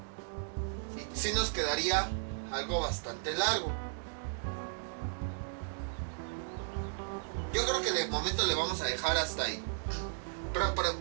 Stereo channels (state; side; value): silent; left; digital silence